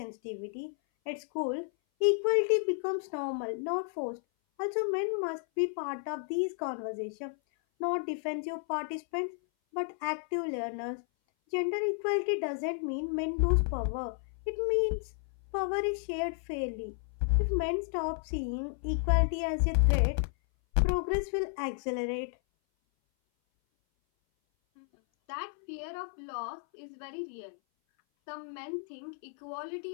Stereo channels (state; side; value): silent; right; 56 dB below the other